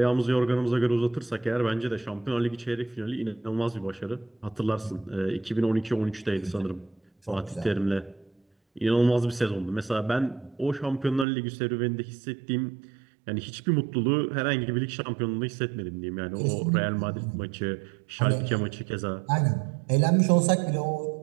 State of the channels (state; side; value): drops out; left; at 11.2 s